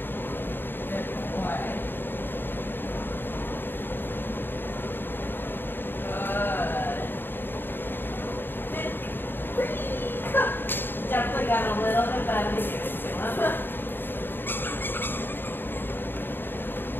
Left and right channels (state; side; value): late; right; 0.097 ms